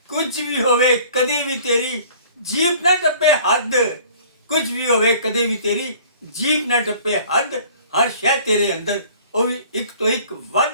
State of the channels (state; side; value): inverted; both; correlation -0.50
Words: ਕੁਝ ਵੀ ਹੋਵੇ ਕਦੇ ਵੀ ਤੇਰੀ ਜੀਪ ਨਾ ਟੱਪੇ ਹੱਦ, ਕੁਝ ਵੀ ਹੋਵੇ ਕਦੇ ਵੀ ਤੇਰੀ ਜੀਪ ਨਾ ਟੱਪੇ ਹੱਦ। ਹਰ ਸ਼ੈ ਤੇਰੇ ਅੰਦਰ ਉਹ ਵੀ ਇੱਕ ਤੋਂ ਇੱਕ